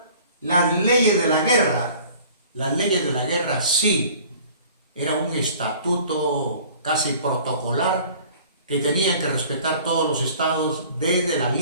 las leyes de la guerra. Las leyes de la guerra sí, era un estatuto casi protocolar que tenían que respetar todos los estados desde la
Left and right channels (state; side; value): inverted; both; correlation -0.50